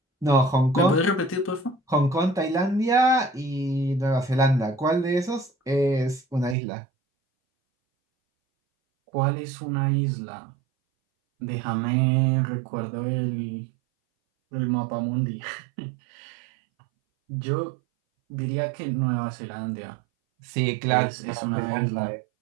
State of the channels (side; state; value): left; drops out; at 6.6 s